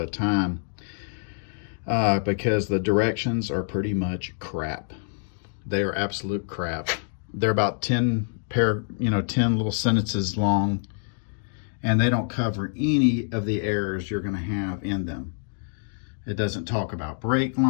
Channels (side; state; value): right; silent; digital silence